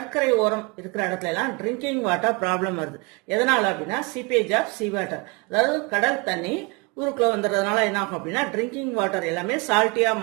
ஓரம் இருக்கிற இடத்துல எல்லாம் drinking water problem வருது. எதனால அப்படின்னா seepage of சீவாட்டர், அதாவது கடல் தண்ணி ஊருக்குள்ள வந்துடுறதுனால என்ன ஆகும் அப்படின்னா ட்ரிங்கிங் வாட்டர் எல்லாமே சால்ட்டியா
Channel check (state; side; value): quieter; left; 28.9 dB